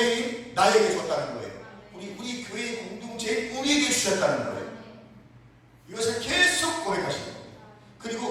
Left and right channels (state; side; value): identical; both; correlation 1.00